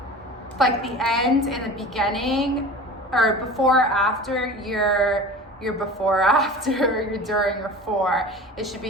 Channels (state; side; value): normal; both; correlation 0.36